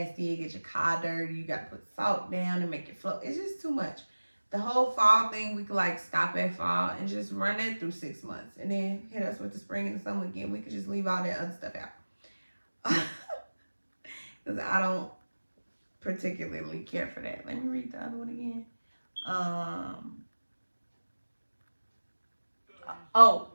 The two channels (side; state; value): both; inverted; correlation -1.00